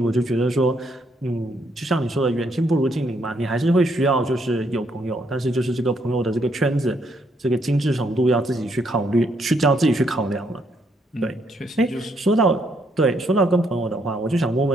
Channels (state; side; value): normal; both; correlation 0.73